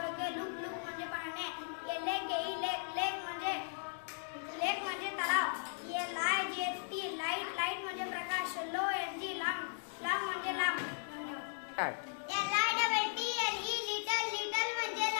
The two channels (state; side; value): silent; right; digital silence